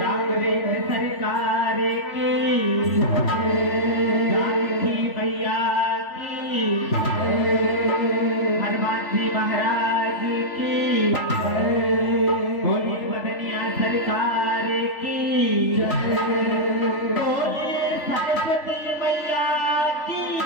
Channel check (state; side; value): late; right; 3.4 ms